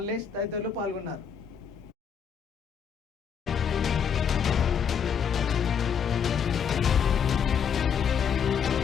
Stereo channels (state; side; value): quieter; right; 7.3 dB